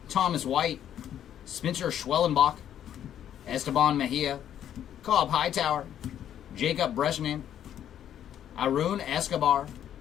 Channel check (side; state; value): right; quieter; 10.3 dB